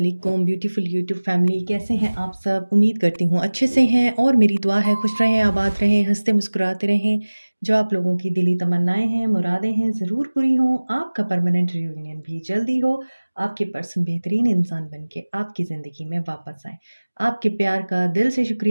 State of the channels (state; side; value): inverted; both; correlation -1.00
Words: ब्यूटीफुल यूट्यूब फैमिली, कैसे हैं आप सब? उम्मीद करती हूँ अच्छे से हैं और मेरी दुआ है खुश रहें, आबाद रहें, हंसते मुस्कुराते रहें। जो आप लोगों की दिली तमन्नाएं हैं, मुरादें हैं, ज़रूर पूरी हों। आपका परमानेंट रियूनियन भी जल्दी हो। आपके पर्सन बेहतरीन इंसान बन के आपकी ज़िंदगी में वापस आए। आपके प्यार का दिल से